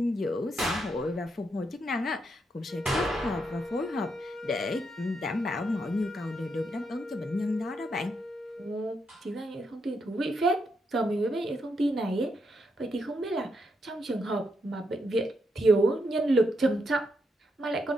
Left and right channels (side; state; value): both; normal; correlation 0.80